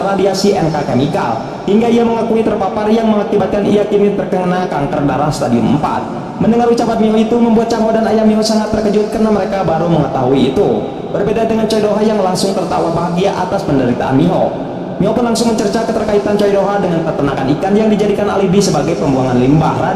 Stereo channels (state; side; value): identical; both; correlation 1.00